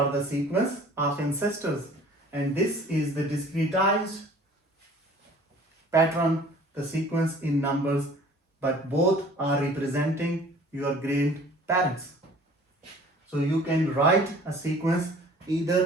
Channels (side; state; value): both; normal; correlation 0.49